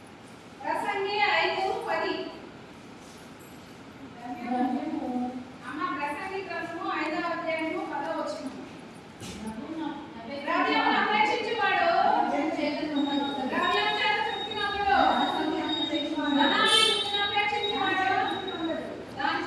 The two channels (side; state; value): both; identical; correlation 1.00